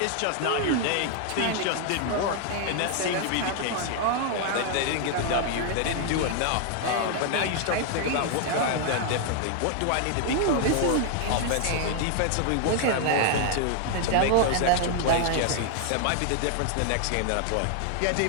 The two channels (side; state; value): both; different; correlation 0.00